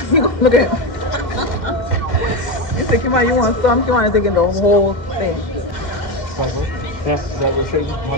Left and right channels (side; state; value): right; late; 2.1 ms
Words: He gonna look at him. You say, Kimani, you want some? Kimani taking the whole thing.